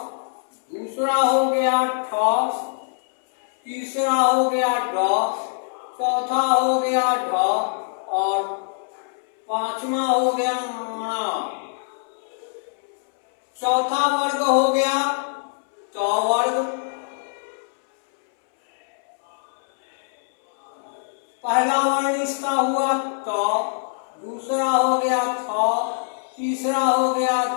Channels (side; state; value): right; silent; 63 dB below the other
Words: दूसरा हो गया ठ, तीसरा हो गया ड, चौथा हो गया ढ और पांचवा हो गया ण। चौथा वर्ग हो गया ट वर्ग। पहला वर्ण इसका हुआ त, दूसरा हो गया थ, तीसरा हो गया